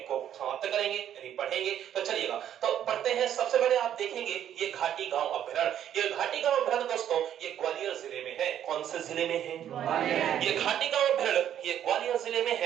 को समाप्त करेंगे, यानी पढ़ेंगे। तो चलिएगा, तो पढ़ते हैं। सबसे पहले आप देखेंगे ये घाटी गांव अभ्यारण्य। ये घाटी गांव अभ्यारण्य दोस्तों ये ग्वालियर जिले में है। कौन से जिले में है? ग्वालियर। ये घाटी गांव अभ्यारण्य ये ग्वालियर जिले में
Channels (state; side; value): quieter; left; 10.3 dB